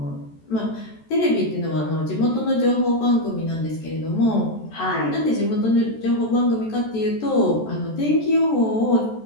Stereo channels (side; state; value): right; late; 14 ms